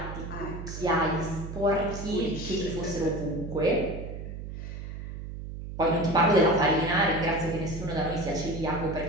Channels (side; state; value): right; noise; hum, 9 dB below the sound